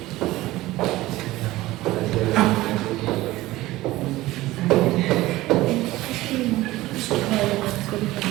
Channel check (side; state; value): left; quieter; 17.6 dB